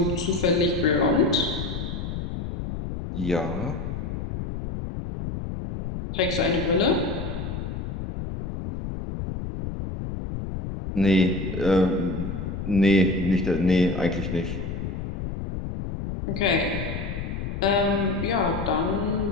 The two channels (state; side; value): noise; left; rumble, 5 dB below the sound